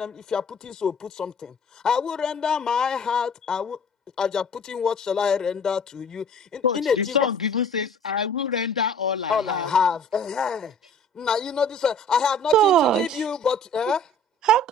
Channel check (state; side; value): normal; both; correlation 0.49